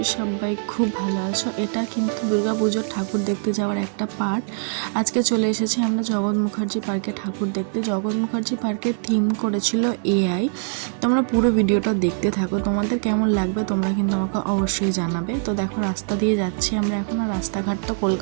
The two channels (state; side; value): silent; left; 64 dB below the other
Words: সবাই খুব ভালো আছো। এটা কিন্তু দুর্গাপুজোর ঠাকুর দেখতে যাওয়ার একটা পার্ট। আজকে চলে এসেছি আমরা জগৎ মুখার্জি পার্কে ঠাকুর দেখতে। জগৎ মুখার্জি পার্কের থিম করেছিল এআই। তোমরা পুরো ভিডিওটা দেখতে থাকো, তোমাদের কেমন লাগবে তোমরা কিন্তু আমাকে অবশ্যই জানাবে। তো দেখো রাস্তা দিয়ে যাচ্ছি আমরা এখন। আর রাস্তাঘাট তো